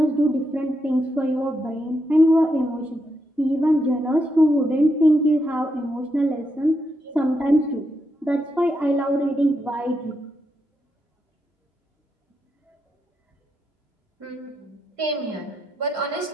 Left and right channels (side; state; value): both; normal; correlation 0.83